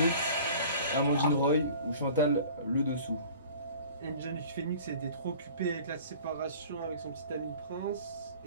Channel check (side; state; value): both; inverted; correlation -0.45